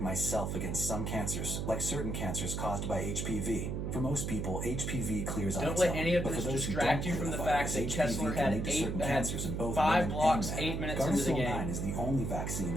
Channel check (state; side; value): noise; right; hum, 2 dB below the sound